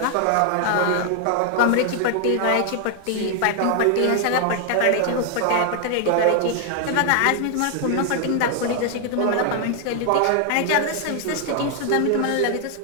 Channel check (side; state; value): both; different; correlation 0.00